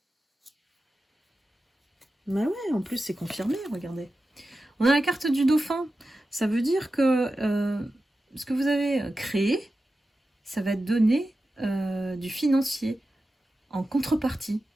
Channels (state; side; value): normal; both; correlation 0.93